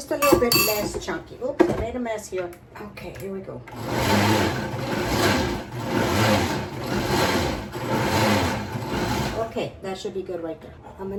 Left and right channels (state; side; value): identical; both; correlation 1.00